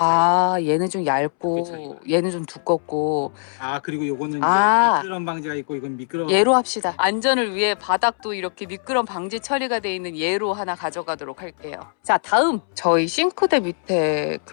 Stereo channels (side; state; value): right; silent; 64 dB below the other